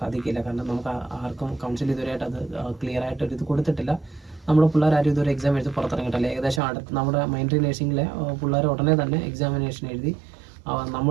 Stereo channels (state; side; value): drops out; left; at 6.6 s